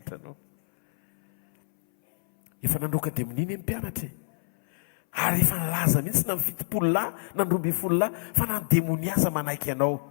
anao. Efa nandroaka dia mininy ny mpianatra ary efa nalaza mihitsy na mifitopololahy na 12 fa nandemoniasa manaiky anao,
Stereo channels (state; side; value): silent; right; 61 dB below the other